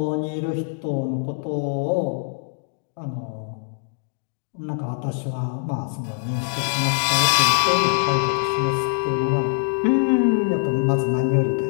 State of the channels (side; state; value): right; silent; digital silence